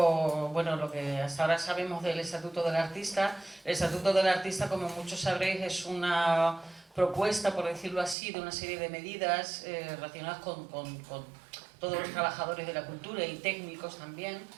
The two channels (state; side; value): drops out; left; at 8.2 s